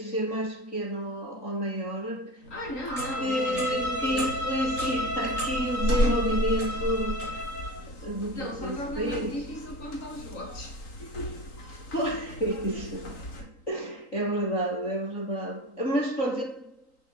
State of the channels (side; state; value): right; late; 3.9 ms